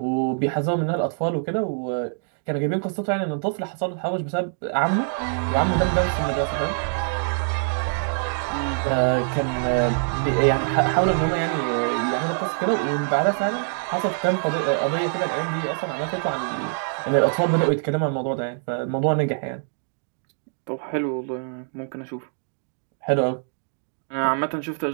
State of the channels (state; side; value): silent; left; digital silence